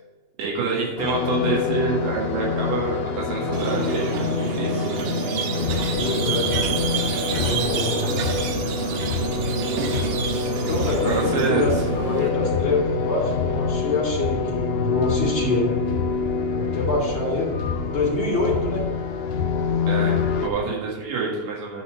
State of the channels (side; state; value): left; late; 2.8 ms